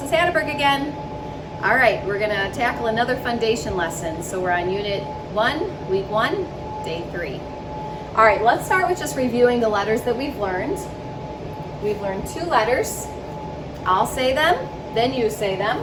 Hatterberg again. All right, we're gonna tackle another foundation lesson. So we're on Unit 1, Week 1, Day 3. All right, let's start with just reviewing the letters that we've learned. We've learned 2 letters. I'll say them, then you say them.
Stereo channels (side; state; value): both; identical; correlation 1.00